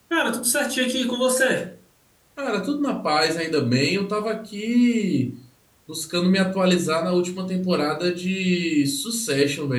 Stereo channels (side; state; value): both; identical; correlation 1.00